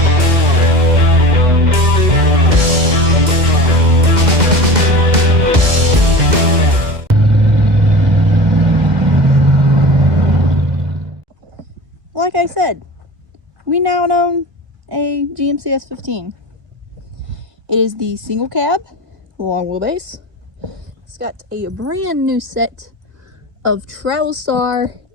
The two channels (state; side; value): late; left; 2.0 ms